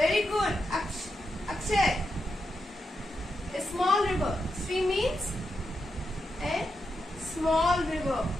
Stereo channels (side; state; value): both; normal; correlation 0.86